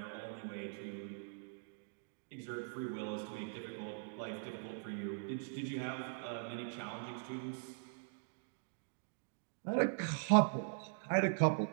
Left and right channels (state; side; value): silent; left; digital silence